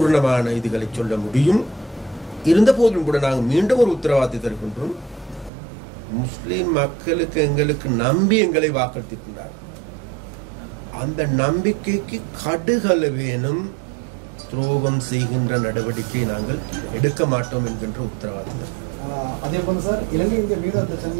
இதுகளை சொல்ல முடியும். இருந்த போதிலும் கூட நாங்கள் மீண்டும் ஒரு உத்தரவாதத்தை தருகின்றோம். முஸ்லிம் மக்களுக்கு எங்களுக்கு நம்பி எங்களை வாக்களித்திருக்கின்றார். அந்த நம்பிக்கைக்கு கடுகளவேனும் துரோகம் செய்கின்ற நடவடிக்கை நாங்கள் எடுக்க மாட்டோம் என்கின்ற உத்தரவாதம். அதே போல சார், இலங்கை இந்திய மீனவ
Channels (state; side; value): drops out; left; at 5.5 s